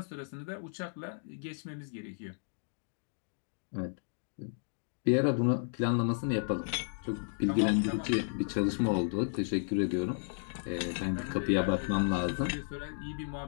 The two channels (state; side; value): silent; right; digital silence